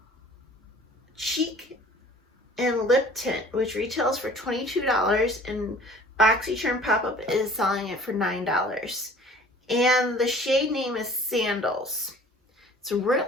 Cheek and Lip Tint, which retails for $22, and Boxycharm Pop-Up is selling it for $9. And the shade name is Sandals. It's really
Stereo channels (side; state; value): both; normal; correlation 0.49